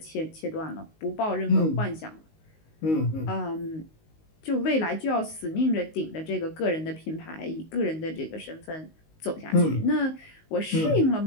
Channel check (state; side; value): late; right; 19 ms